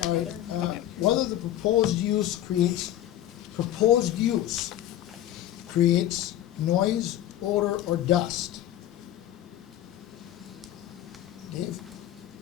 All right, another. whether the proposed use creates noise, odor, or dust. Dave?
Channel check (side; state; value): right; quieter; 12.8 dB